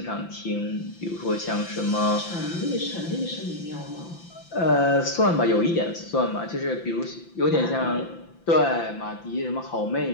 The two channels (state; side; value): late; right; 5.9 ms